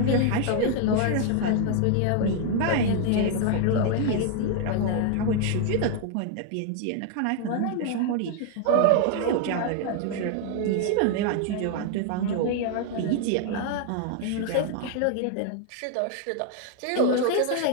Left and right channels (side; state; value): both; different; correlation 0.00